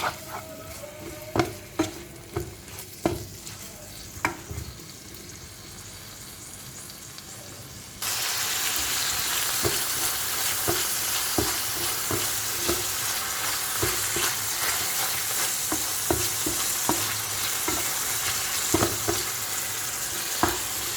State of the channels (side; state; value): both; identical; correlation 1.00